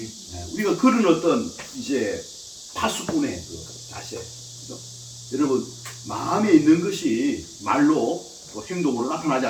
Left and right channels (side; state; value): both; identical; correlation 1.00